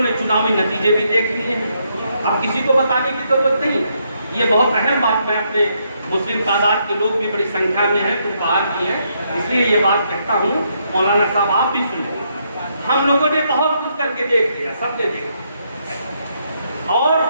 ने चुनावी नतीजे भी देख लिए हैं, अब किसी को बताने की जरूरत नहीं। ये बहुत अहम बात, मैं अपने मुस्लिम तादाद के लोग भी बड़ी संख्या में हैं, कुछ बाहर भी हैं, इसलिए ये बात कहता हूँ, मौलाना साहब आप भी सुने, हम लोगों ने बहुत कुछ करके देख लिया, सबने देखा, और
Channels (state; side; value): inverted; both; correlation -0.76